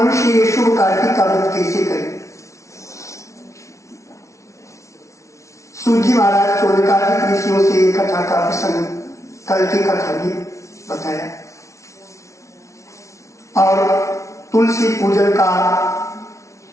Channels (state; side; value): late; right; 0.14 ms